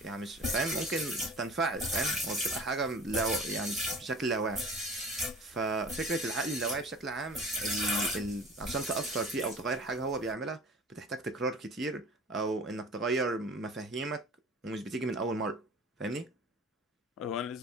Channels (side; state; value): both; normal; correlation 0.41